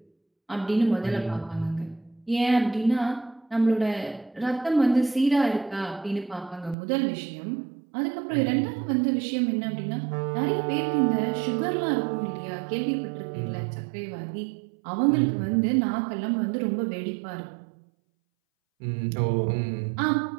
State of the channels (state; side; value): drops out; left; at 6.8 s